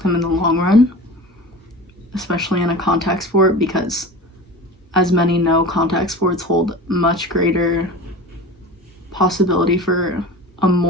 them in the long run, especially in a contact sport, because as many know, contact sports hold much greater possibility for a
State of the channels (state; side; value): normal; both; correlation 0.34